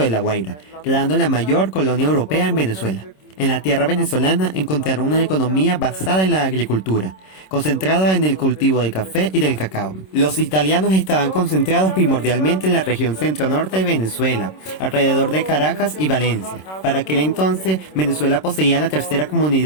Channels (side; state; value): right; late; 26 ms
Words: La Guaira, creando la mayor colonia europea en Venezuela. En la tierra venezolana encontraron una economía basada en la agricultura, concentrada en el cultivo del café y del cacao. Los italianos estaban concentrados primordialmente en la región centro-norte de Venezuela, alrededor de Caracas y Valencia. Para aquel entonces, Venezuela poseía la tercera